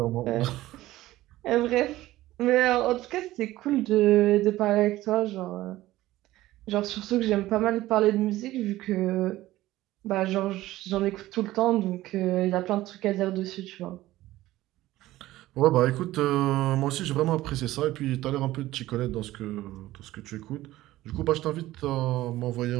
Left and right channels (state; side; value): quieter; left; 16.2 dB